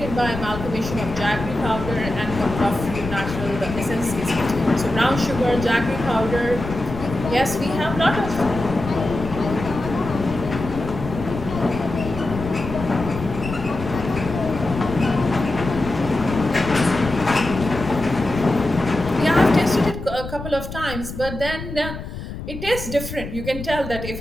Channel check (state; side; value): noise; left; rumble, 9 dB below the sound